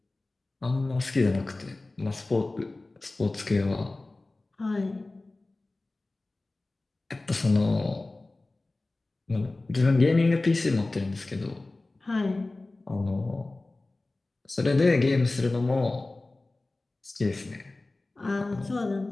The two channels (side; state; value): right; quieter; 3.1 dB